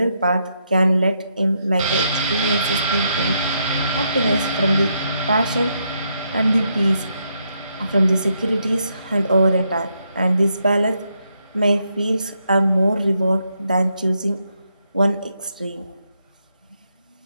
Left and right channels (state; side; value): inverted; both; correlation -0.79